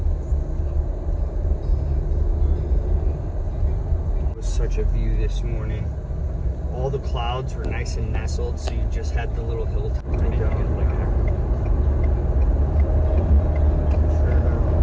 Such a view this morning. All the clouds were nice and nestled, so you just had the little hilltop.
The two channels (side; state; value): both; identical; correlation 1.00